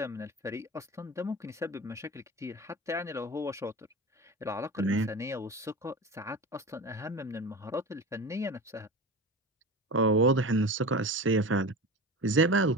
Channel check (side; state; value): both; normal; correlation 0.29